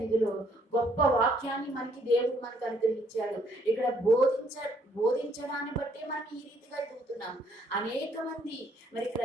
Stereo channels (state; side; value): normal; both; correlation 0.67